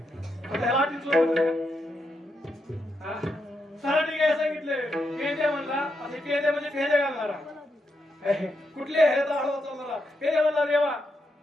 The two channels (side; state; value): both; normal; correlation 0.82